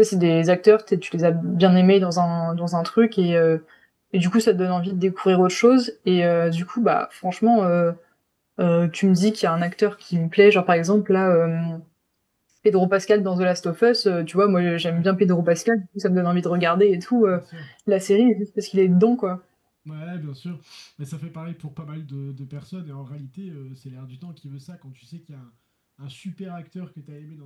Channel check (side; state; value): both; identical; correlation 1.00